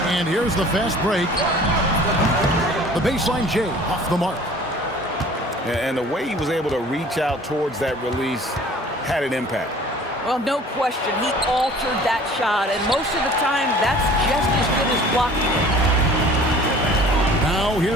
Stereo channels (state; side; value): normal; both; correlation 0.48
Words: And here's the fast break. The baseline J off the mark. And the way he was able to reach out towards that release had an impact. Well, no question. He altered that shot, and most of the time, that's just as good as blocking it. Now